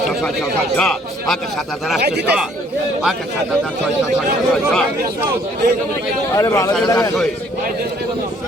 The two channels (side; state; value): both; normal; correlation 0.61